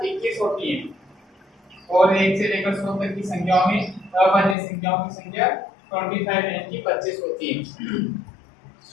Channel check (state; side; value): drops out; right; at 4.5 s